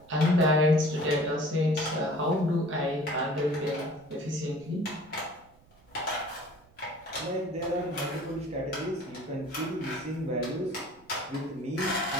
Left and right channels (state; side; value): noise; right; rumble, 29 dB below the sound